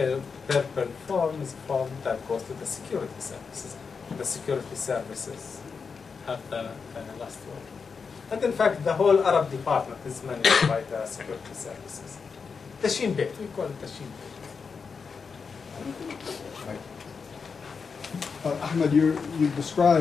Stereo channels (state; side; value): quieter; right; 5.4 dB